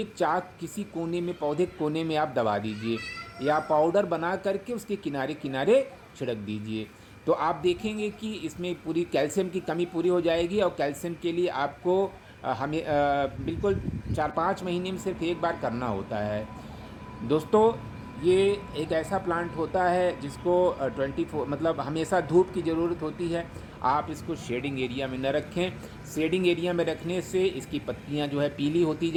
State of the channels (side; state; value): both; identical; correlation 1.00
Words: चाक किसी कोने में, पौधे के कोने में आप दबा दीजिए या पाउडर बना करके उसके किनारे किनारे छिड़क दीजिए। तो आप देखेंगे कि इसमें पूरी कैल्शियम की कमी पूरी हो जाएगी। और कैल्शियम के लिए आपको हमें बिल्कुल 4-5 महीने में सिर्फ एक बार करना होता है दोस्तों। ये एक ऐसा प्लांट होता है जिसको 24 मतलब हमेशा धूप की ज़रूरत होती है। आप इसको शेडिंग एरिया में न रखें। शेडिंग एरिया में रखने से इसकी पत्तियां जो है पीली होती